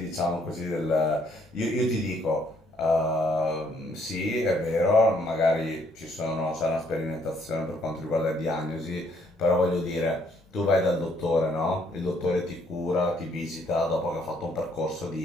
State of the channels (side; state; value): both; normal; correlation 0.67